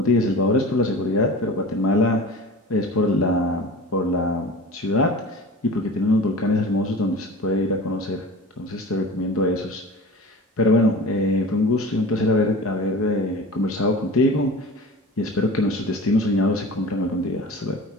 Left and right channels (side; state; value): both; normal; correlation 0.36